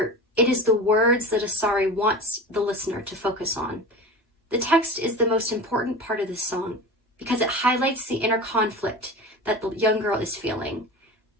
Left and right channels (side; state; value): both; normal; correlation 0.32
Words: it is the words that Asare wants the listener to focus on. The text is the most important part of this song because it highlights the inner conflict that the young girl is feeling.